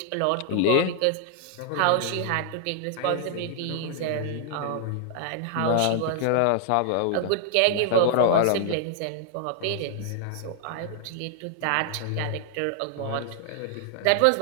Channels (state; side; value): different; both; correlation -0.01